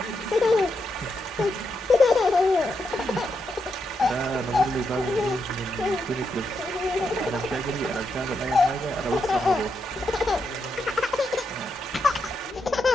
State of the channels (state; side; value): normal; both; correlation 0.83